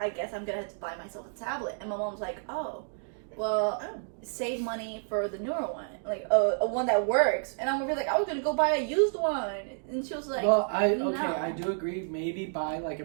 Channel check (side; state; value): left; silent; digital silence